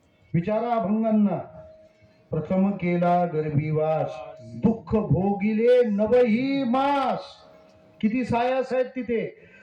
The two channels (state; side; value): identical; both; correlation 1.00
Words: विचारा अभंगांना. प्रथम केला गर्भीवास, दुःख भोगिले नवही मास. किती सायास आहेत तिथे.